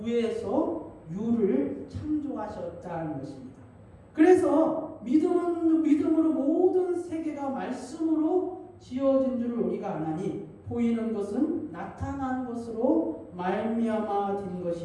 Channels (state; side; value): identical; both; correlation 1.00